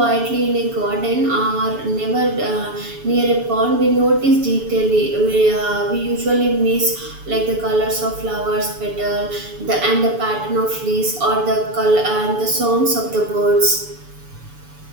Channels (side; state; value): left; late; 7.0 ms